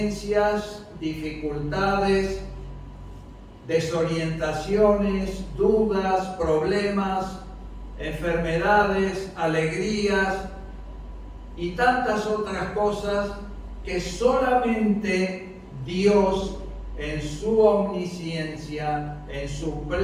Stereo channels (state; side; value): identical; both; correlation 1.00